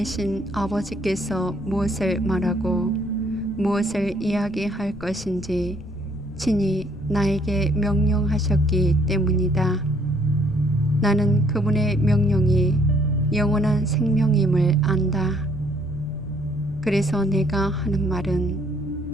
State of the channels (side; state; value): left; noise; rumble, 16 dB below the sound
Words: 아버지께서 무엇을 말하고 무엇을 이야기할 것인지 친히 나에게 명령하셨기 때문이다. 나는 그분의 명령이 영원한 생명임을 안다. 그래서 내가 하는